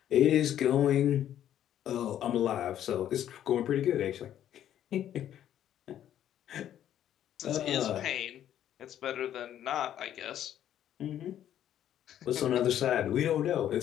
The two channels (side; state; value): right; quieter; 11.0 dB